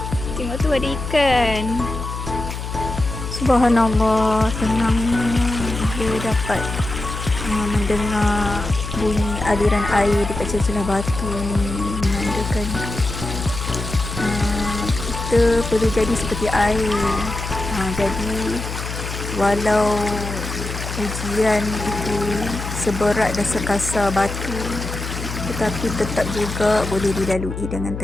Tengok tu ada ikan. Subhanallah, tenangnya bila dapat mendengar bunyi aliran air dekat celah-celah batu ni, menandakan kita perlu jadi seperti air. Jadi walau ujian itu seberat dan sekasar batu, tetapi tetap juga boleh dilalui dengan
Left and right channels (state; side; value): noise; left; hum, 7 dB below the sound